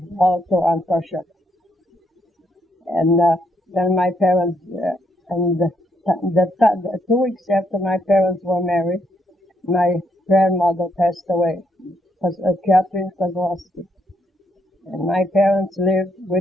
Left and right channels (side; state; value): both; normal; correlation 0.75